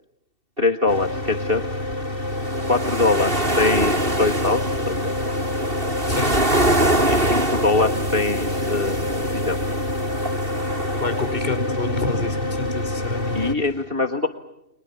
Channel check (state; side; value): late; left; 2.7 ms